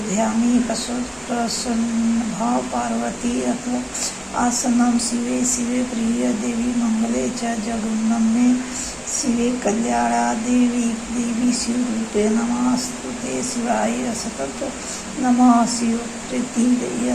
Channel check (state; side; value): identical; both; correlation 1.00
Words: ध्यामी प्रसन्नभाव पार्वती। अथ आसनं शिवे शिवे प्रिय देवी मंगले च जगन्नमे शिवे कल्याणा देवी शिवरूपे नमस्तुते शिवाय सतत नमः शिवप्रीति